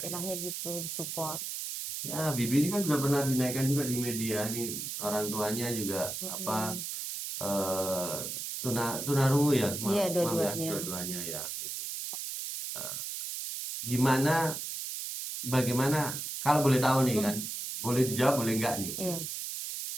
gitu, disupport. Ya, Bibi ini kan sudah pernah dinaikkan juga di media nih, orang tuanya juga apa tunarungu ya, Iya, maaf ya, dua-duanya. dua-duanya ya. Gitu. Eh, Gimana, bagaimana, kalau boleh tahu nih kan, boleh dijawab, boleh enggak nih. Iya.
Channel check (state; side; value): noise; right; hiss, 5 dB below the sound